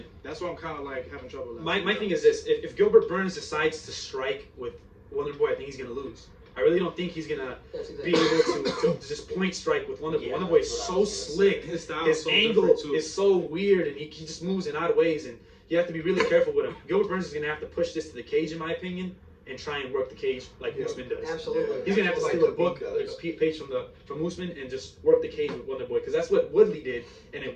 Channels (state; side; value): identical; both; correlation 1.00